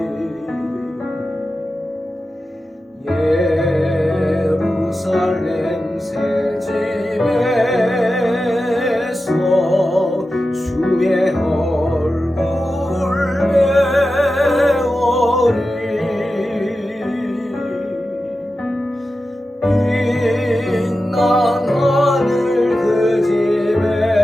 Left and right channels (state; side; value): normal; both; correlation 0.92